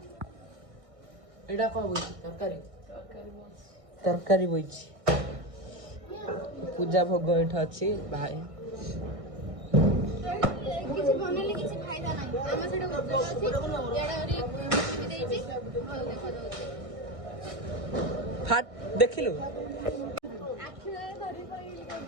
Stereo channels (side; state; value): left; late; 1.6 ms